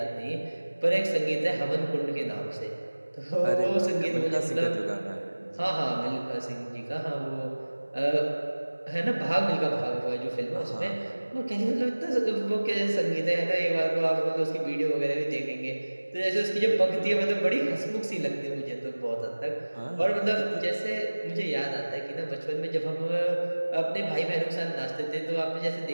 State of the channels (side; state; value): both; inverted; correlation -1.00